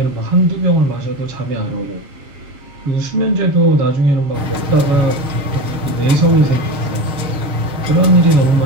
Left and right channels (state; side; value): late; left; 6.6 ms